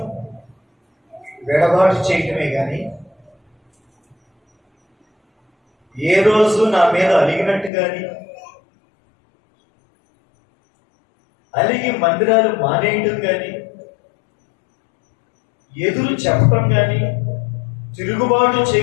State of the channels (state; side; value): drops out; right; at 7.7 s